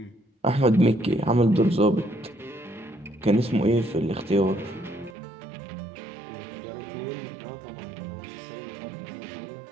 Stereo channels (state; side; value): drops out; left; at 5.2 s